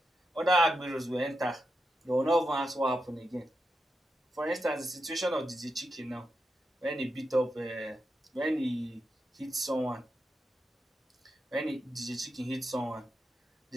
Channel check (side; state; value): both; normal; correlation 0.86